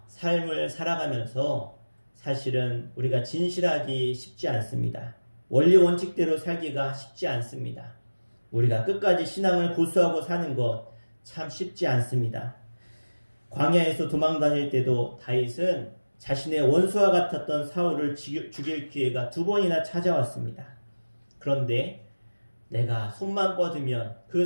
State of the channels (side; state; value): both; inverted; correlation -1.00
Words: 삶을 살아가면서 사실은 우리가 진실하기 쉽지 않습니다. 원리 원칙대로 살기가 쉽지 않습니다. 우리가 끝까지 신앙을 고수하고 사는 것 참 쉽지 않습니다. 광야에서 도망 다닐 때도 다윗은 자신의 원수와 같았던 사울을 죽일 기회가 2번이나 찾아왔습니다. 그런데 내가 손만 뻗으면 그